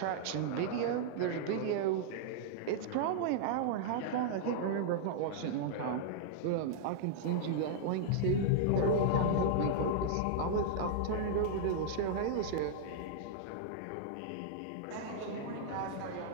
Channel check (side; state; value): both; different; correlation -0.01